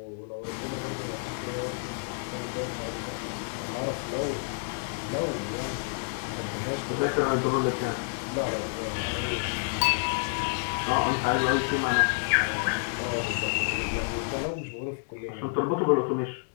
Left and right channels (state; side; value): silent; right; digital silence